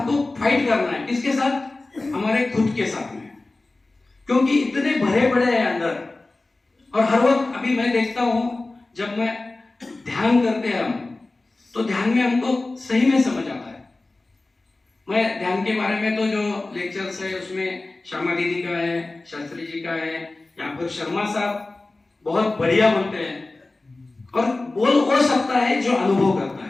फाइट करना है, किसके साथ? हमारे खुद के साथ में, क्योंकि इतने भरे पड़े हैं अंदर। और हर वक्त अभी मैं देखता हूं, जब मैं ध्यान करते हैं हम, तो ध्यान में हमको सही में समझ आता है। मैं ध्यान के बारे में तो जो लेक्चर्स है उसमें श्यामा दीदी का है, शास्त्री जी का है, या फिर शर्मा साहब बहुत बढ़िया बोलते हैं, और बोल हो सकता है जो अनुभव करता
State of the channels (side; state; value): right; quieter; 3.1 dB